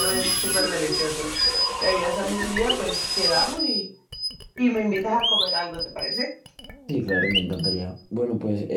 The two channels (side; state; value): both; identical; correlation 1.00